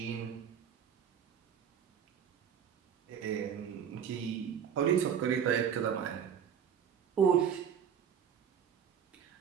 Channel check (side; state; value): left; quieter; 8.0 dB